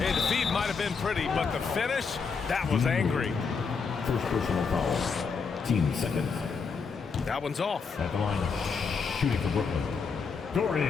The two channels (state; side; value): quieter; right; 5.3 dB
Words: the feed might have been pretty, but the finish, that was angry. First personal foul. Team seconds. That one's off. At the line, shooting for Brooklyn.